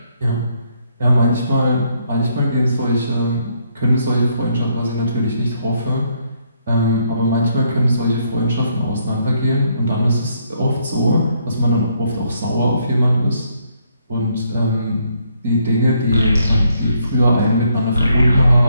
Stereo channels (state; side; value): inverted; both; correlation -0.72